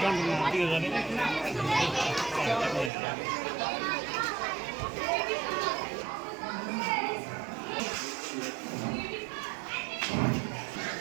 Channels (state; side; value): drops out; left; at 2.9 s